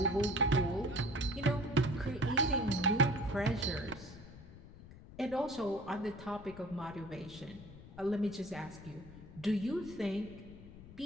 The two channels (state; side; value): noise; left; rumble, 17 dB below the sound